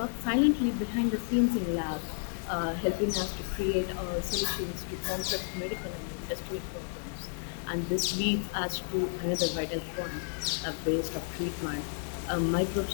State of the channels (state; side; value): silent; right; digital silence